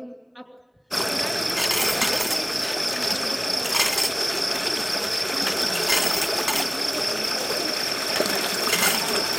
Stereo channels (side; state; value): both; identical; correlation 1.00